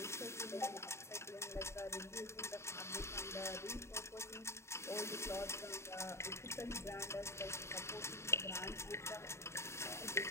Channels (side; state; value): right; late; 0.13 ms